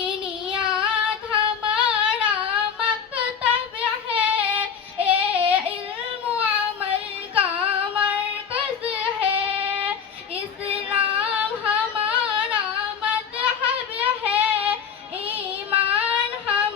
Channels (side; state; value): right; quieter; 7.2 dB